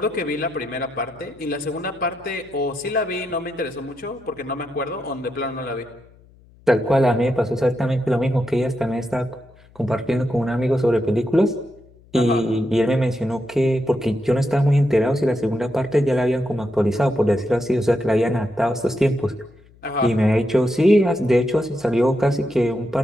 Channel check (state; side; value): noise; left; hum, 27 dB below the sound